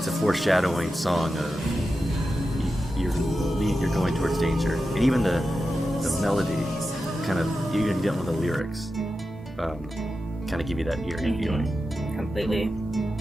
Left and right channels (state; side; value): normal; both; correlation 0.91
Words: a foreshadowing song of you're going towards danger, and even the melody kind of even get one of the lyrics kind of give you that eerie feeling. Completely.